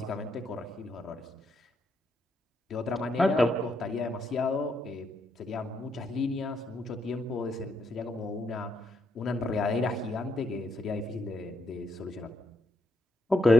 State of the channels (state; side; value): normal; both; correlation 0.78